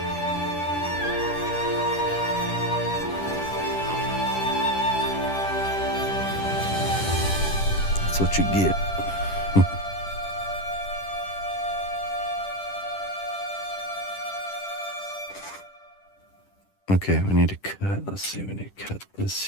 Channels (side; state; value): right; late; 10 ms